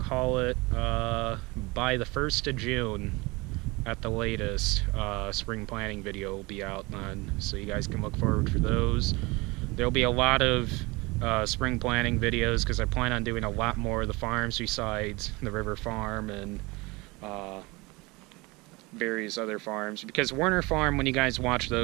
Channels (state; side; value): quieter; left; 24.4 dB